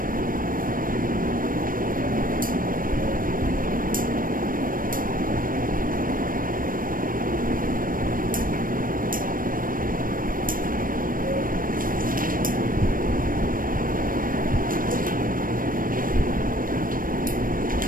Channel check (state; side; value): late; left; 0.40 ms